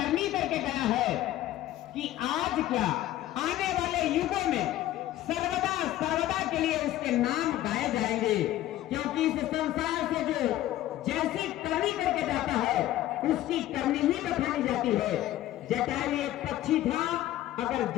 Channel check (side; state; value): right; quieter; 14.1 dB